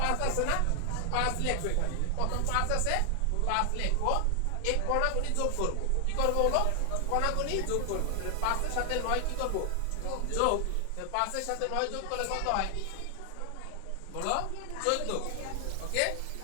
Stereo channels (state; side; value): different; both; correlation 0.00